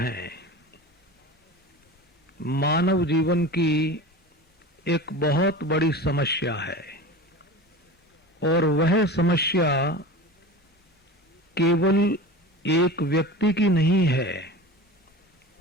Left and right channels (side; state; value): both; normal; correlation 0.33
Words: मानव जीवन की एक बहुत बड़ी समस्या है और वह समस्या केवल एक व्यक्ति की नहीं है।